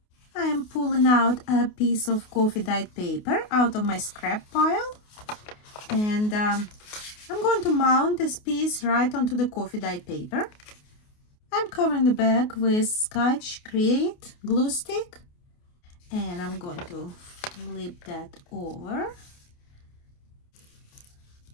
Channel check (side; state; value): right; late; 28 ms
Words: I am pulling out a piece of coffee dyed paper out of my scrap pile, and I'm going to mount this piece right onto the coffee dyed paper. I'm covering the back with Scotch Create glue stick, and I'm going to flip that over.